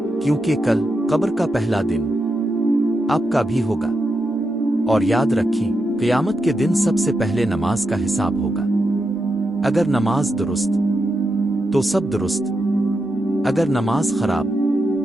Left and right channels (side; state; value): both; normal; correlation 0.86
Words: کیونکہ کل قبر کا پہلا دن آپ کا بھی ہوگا۔ اور یاد رکھیں، قیامت کے دن سب سے پہلے نماز کا حساب ہوگا۔ اگر نماز درست تو سب درست، اگر نماز خراب